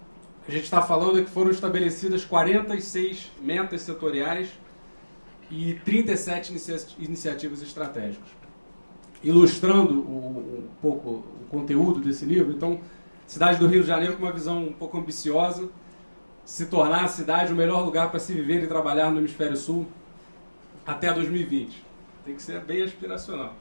a gente está falando que foram estabelecidas 46 metas setoriais e 37 iniciativas estratégicas. Ilustrando um pouco o conteúdo desse livro, então, cidade do Rio de Janeiro com uma visão um pouco ambiciosa, se tornar a cidade o melhor lugar para se viver e trabalhar no Hemisfério Sul até 2020. Tem que ser bem aspiracional.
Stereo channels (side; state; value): both; inverted; correlation -1.00